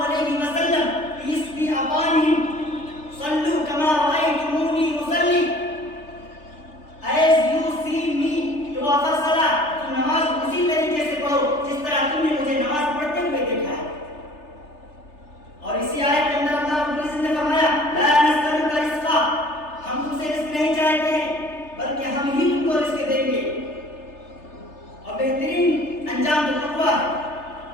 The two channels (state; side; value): late; right; 3.3 ms